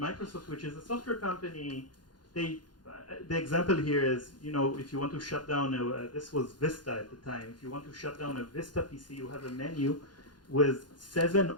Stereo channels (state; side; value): late; right; 0.71 ms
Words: which is a software company, the example here is, you know, if you want to shut down, this was Vista at the time, if you want to shut down a Vista PC, you have a menu with 7